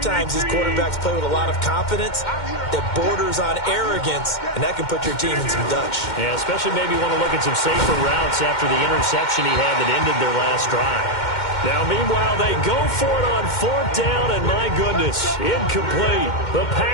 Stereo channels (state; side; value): late; right; 2.1 ms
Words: these quarterbacks play with a lot of confidence that borders on arrogance, and that can put your team in some Dutch. Yeah, especially maybe want to look at some safer routes after the interception he had that ended their last drive. Now, meanwhile, they go for it on 4th down, and my goodness, incomplete. The